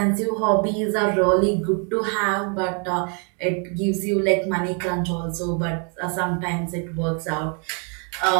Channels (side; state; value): left; quieter; 38.3 dB